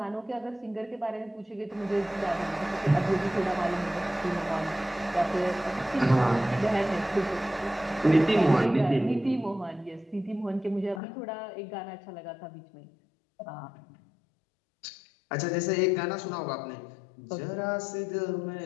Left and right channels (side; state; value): right; drops out; at 11.0 s